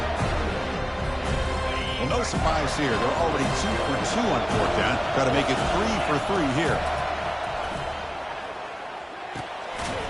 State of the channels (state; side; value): identical; both; correlation 1.00